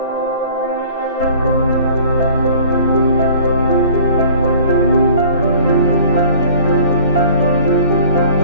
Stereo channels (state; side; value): inverted; both; correlation -0.50